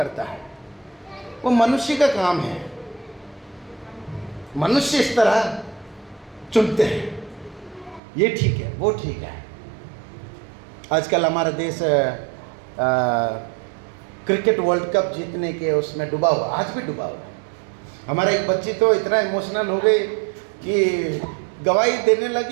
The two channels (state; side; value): drops out; left; at 8.0 s